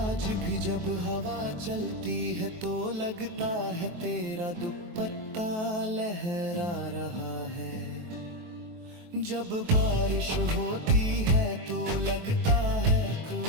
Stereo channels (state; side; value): late; left; 23 ms